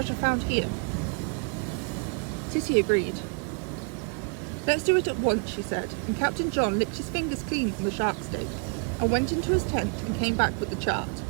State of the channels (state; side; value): quieter; left; 39.1 dB